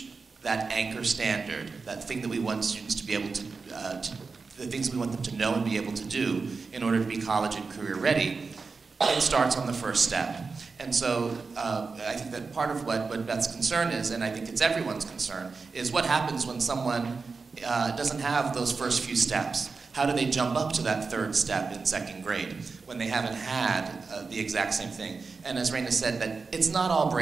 that anchor standard, that thing that we want students to be able to the things we want them to know and be able to do in order to be college and career ready, it starts on the first step. And so I think that part of what Beth's concern is, and I think it's everyone's concern, is what happens when someone doesn't have those first few steps. How do they jump up to that third step in second grade when they haven't had the exact same thing? And as Raina said, that it's not all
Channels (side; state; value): left; quieter; 4.5 dB